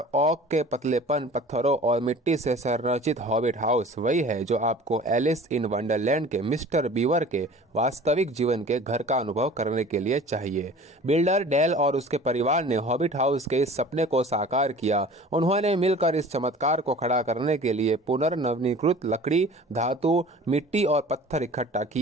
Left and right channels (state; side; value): normal; both; correlation 0.44